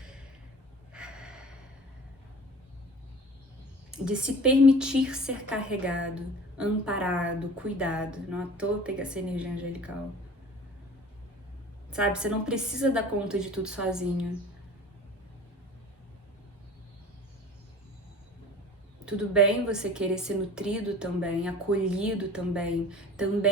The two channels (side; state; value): both; normal; correlation 0.42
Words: De se permitir ser carregado, amparado, cuidado. Não à toa pegar essa energia angelical. Sabe, você não precisa dar conta de tudo sozinho. Tudo bem você querer ser nutrido também, acolhido